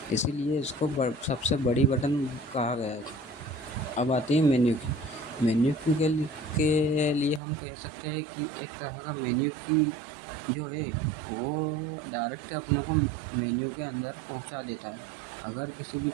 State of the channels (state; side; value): drops out; left; at 7.4 s